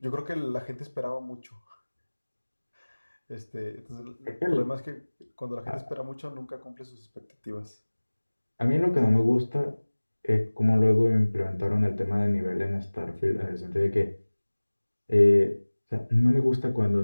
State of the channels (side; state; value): both; inverted; correlation -1.00